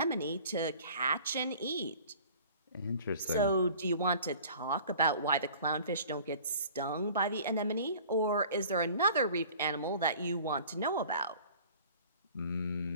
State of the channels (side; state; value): both; inverted; correlation -0.48